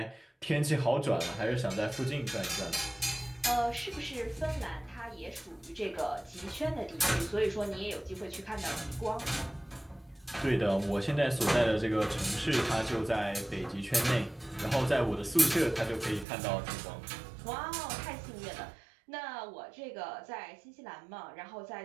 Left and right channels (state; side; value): drops out; left; at 16.2 s